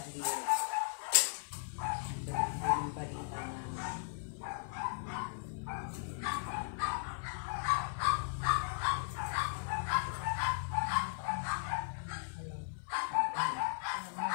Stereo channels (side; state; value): right; silent; 53 dB below the other